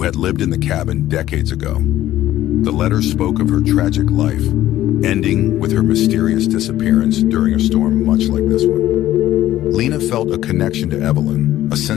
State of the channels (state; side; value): quieter; right; 13.8 dB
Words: had lived in the cabin decades ago. The letters spoke of her tragic life, ending with her mysterious disappearance during a storm much like this one. Lena felt a connection to Evelyn, a